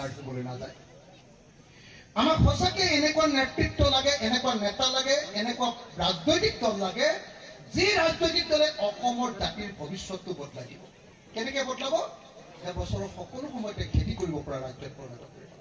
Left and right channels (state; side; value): identical; both; correlation 1.00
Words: হ'বলৈ নাযায়। আমাক সঁচাকে এনেকুৱা নেতৃত্ব লাগে, এনেকুৱা নেতা লাগে, এনেকুৱা ৰাজনৈতিক দল লাগে যি ৰাজনৈতিক দলে অসমৰ জাতিৰ ভৱিষ্যতটো বদলাই দিব। কেনেকে বদলাব? বছৰৰ সকলো সময়তে খেতি কৰিব পৰা ৰাজ্যত পৰিণত কৰিব।